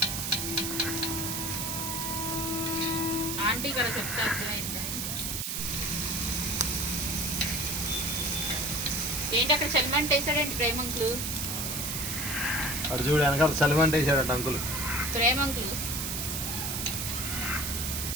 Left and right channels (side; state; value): right; noise; hiss, 2 dB below the sound